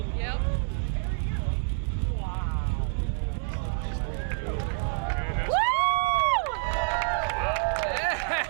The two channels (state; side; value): silent; left; 60 dB below the other